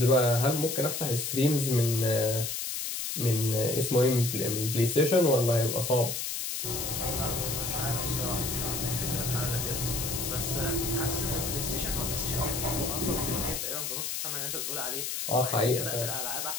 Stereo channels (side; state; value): left; noise; hiss, 3 dB below the sound